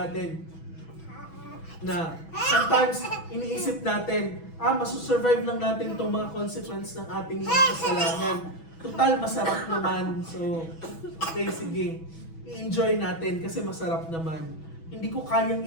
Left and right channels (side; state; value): right; late; 6.1 ms